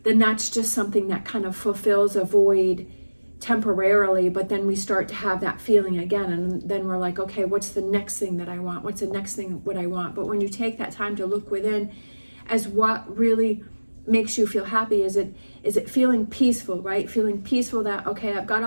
Then that's just something that kind of fulfills a void temporarily, but then we start to have that feeling again, and then we're like, okay, what's the next thing that I want? What's the next thing what I want? But when you take that time to look within as what really makes you feel happy, is it feeling peaceful, right? Feeling peaceful that, okay, I've got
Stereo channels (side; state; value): both; inverted; correlation -1.00